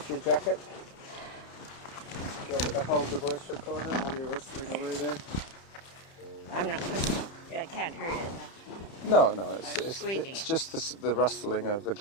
your jacket? Do you want me to hold the voice recorder while you're whistling away there? I can't hurt it. No, it's just the rustling of the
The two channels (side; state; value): right; late; 30 ms